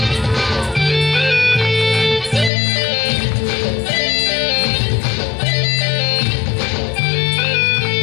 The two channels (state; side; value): drops out; right; at 2.5 s